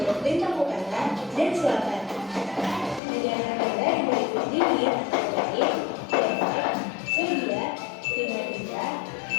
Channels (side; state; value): right; drops out; at 3.0 s